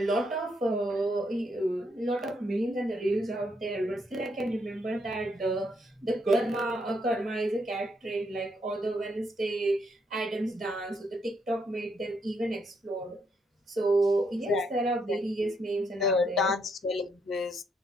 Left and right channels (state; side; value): normal; both; correlation 0.75